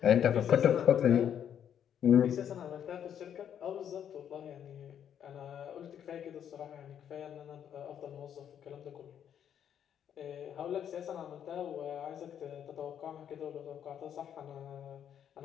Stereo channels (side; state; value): right; quieter; 9.1 dB